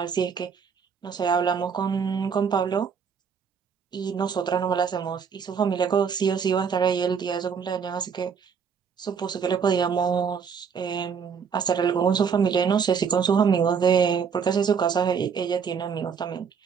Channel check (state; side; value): quieter; left; 6.5 dB